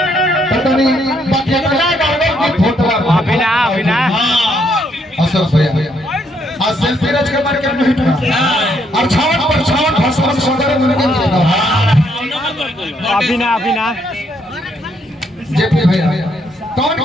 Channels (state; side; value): normal; both; correlation 0.72